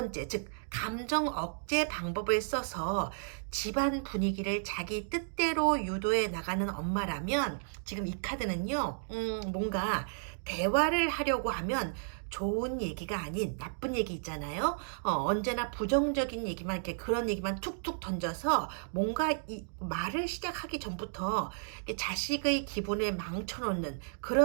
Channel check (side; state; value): left; silent; digital silence